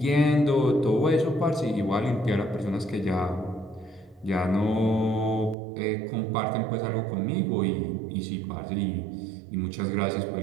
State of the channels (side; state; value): left; drops out; at 5.6 s